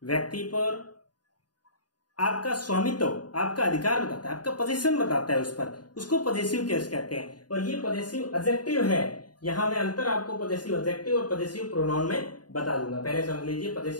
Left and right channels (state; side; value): late; right; 0.70 ms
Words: व्यक्ति पर आपका स्वामित्व, आपका अधिकार बताता है, आपका पोजीशन बताता है उस पर, उसको पजेसिव केस कहते हैं। और ये पजेसिव एडजेक्टिव है। यहां मैं अंतर आपको पजेसिव एडजेक्टिव और पजेसिव प्रोनाउन में बता दूंगा। पहले समझ लीजिए,